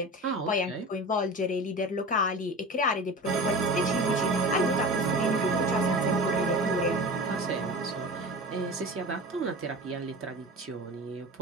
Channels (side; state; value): both; normal; correlation 0.33